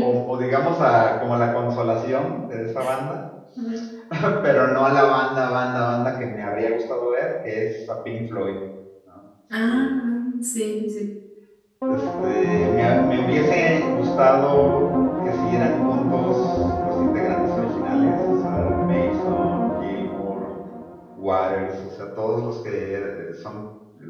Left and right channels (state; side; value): identical; both; correlation 1.00